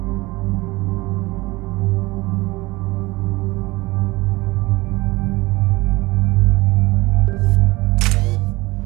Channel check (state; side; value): quieter; left; 21.6 dB